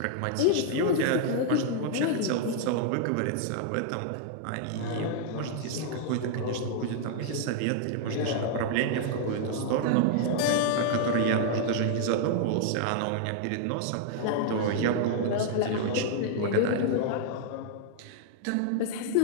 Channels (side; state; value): both; different; correlation -0.01